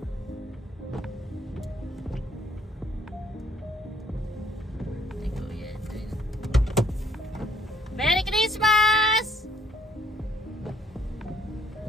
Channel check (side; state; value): both; normal; correlation 0.66